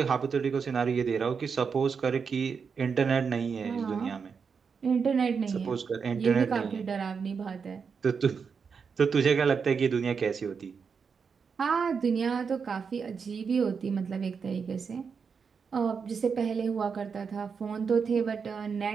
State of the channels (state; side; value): quieter; left; 5.9 dB